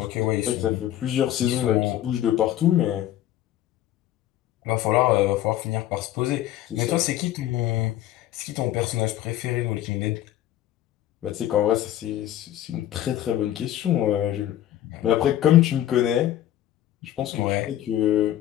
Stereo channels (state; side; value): quieter; right; 12.7 dB